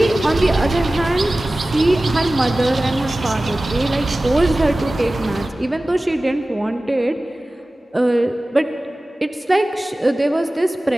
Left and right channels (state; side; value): normal; both; correlation 0.97